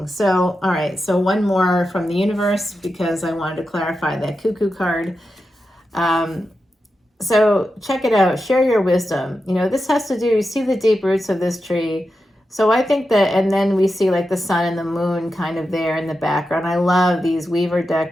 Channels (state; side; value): normal; both; correlation 0.90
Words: So, all right. So one more from the universe, because I wanted to clarify that cuckoo card. So check it out. Share your wisdom. You know, this has to do, you see the deep roots of this tree. So I think that, and then we see like the sun and the moon kind of there in the background. I love these Weaver